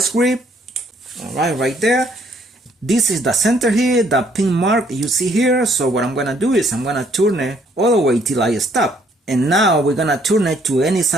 grip. Alright, right there. This is the center here, the pin mark you see here. So what I'm gonna do is I'm gonna turn it all the way till I stop. And now we're gonna turn it to any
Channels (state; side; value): normal; both; correlation 0.65